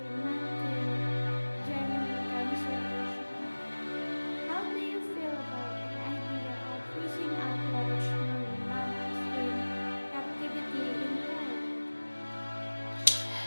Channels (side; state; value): both; inverted; correlation -1.00